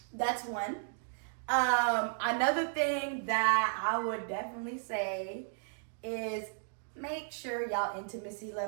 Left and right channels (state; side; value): silent; left; digital silence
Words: that's one. Another thing that I would definitely say is make sure y'all intimacy